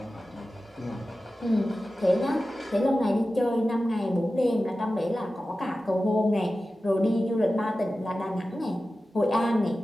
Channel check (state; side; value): normal; both; correlation 0.94